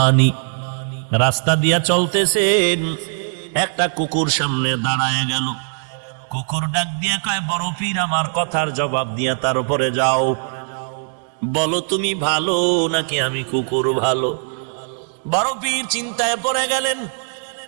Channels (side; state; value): left; silent; 66 dB below the other